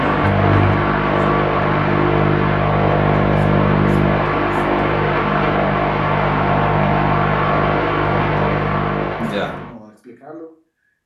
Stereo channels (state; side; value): identical; both; correlation 1.00